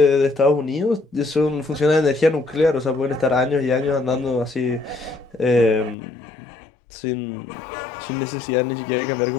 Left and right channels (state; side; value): drops out; right; at 6.0 s